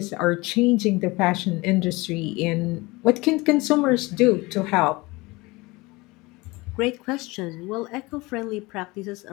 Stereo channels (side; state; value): right; quieter; 23.1 dB